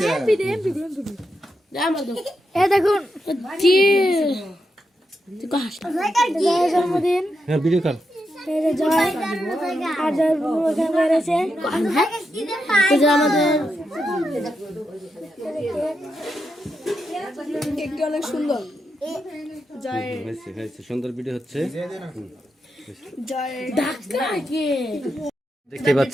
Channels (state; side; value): normal; both; correlation 0.85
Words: দেখুন জন্মদিন ভিডিও কর। অনেক সুন্দর সুন্দর ভিডিও হচ্ছে। দেখতে